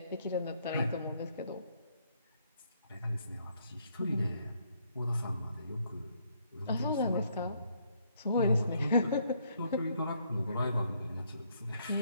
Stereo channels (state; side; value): inverted; both; correlation -0.70